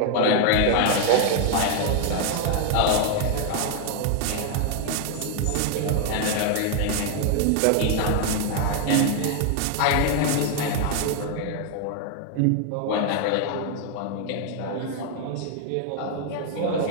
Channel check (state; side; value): different; both; correlation 0.00